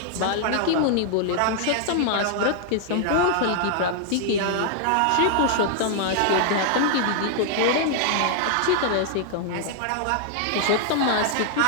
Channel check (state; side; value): different; both; correlation 0.00